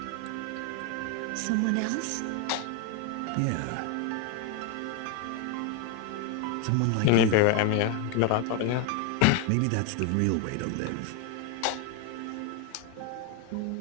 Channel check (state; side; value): different; both; correlation 0.01